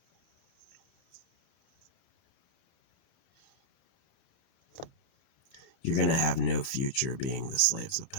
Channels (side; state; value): right; late; 30 ms